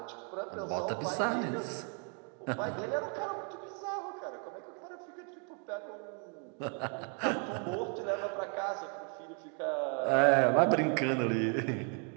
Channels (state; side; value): quieter; left; 39.5 dB